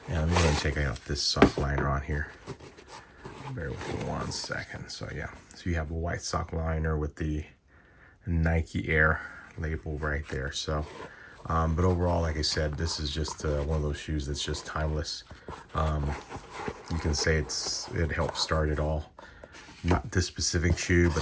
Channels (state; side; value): identical; both; correlation 1.00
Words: And let me go ahead and take out this sock liner on here. Bear with me 1 second. So yeah, so you have a white sock liner with the Nike Air label right there. So but overall, like I said, this is just one of those shoes that's just timeless. You can say it helped start it all. Not this specific shoe,